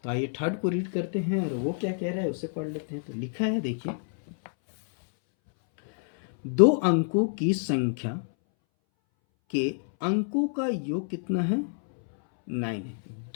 तो आइए थर्ड को रीड करते हैं और वो क्या कह रहा है उसे पढ़ लेते हैं। तो लिखा है, देखिए, 2 अंकों की संख्या के अंकों का योग कितना है, 9 है।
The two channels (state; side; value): silent; right; 60 dB below the other